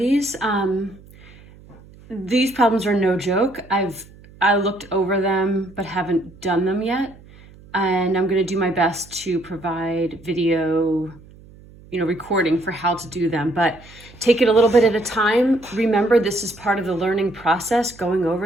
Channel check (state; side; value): noise; right; hum, 23 dB below the sound